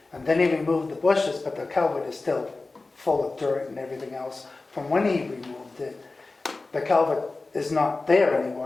and then he removed the bushes, but the culvert is still full of dirt and everything else from when he removed it. The culvert is not there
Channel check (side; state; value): right; quieter; 3.5 dB